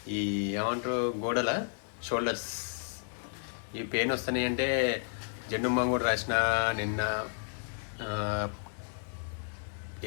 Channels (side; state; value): right; silent; digital silence